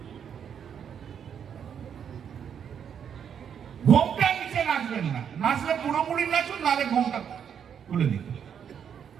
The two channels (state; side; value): quieter; left; 8.1 dB